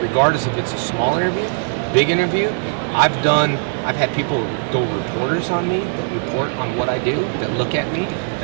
Regardless if it's a small interview, big interview. I've had people go reporters on me, report on what I do, that look at me,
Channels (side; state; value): left; silent; 66 dB below the other